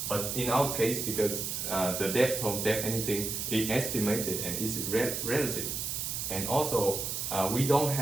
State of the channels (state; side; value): noise; right; hiss, 3 dB below the sound